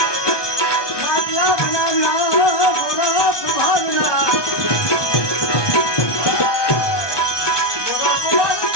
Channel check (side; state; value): right; late; 1.2 ms